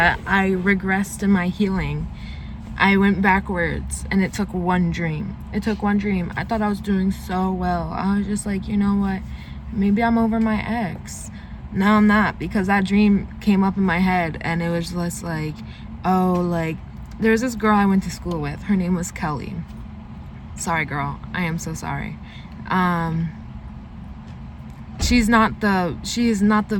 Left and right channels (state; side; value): identical; both; correlation 1.00